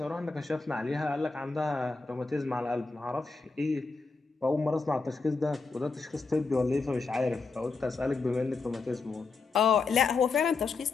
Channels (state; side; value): quieter; right; 4.2 dB